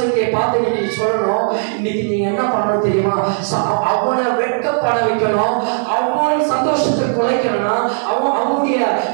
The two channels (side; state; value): left; silent; digital silence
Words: பார்த்து நீங்க சொல்லணும். இன்னைக்கு நீங்க என்ன பண்ணணும் தெரியுமா? அவனை வெட்கப்பட வைக்கணும், அவன் சந்தோஷத்தை குலைக்கணும்னா, அவனுடைய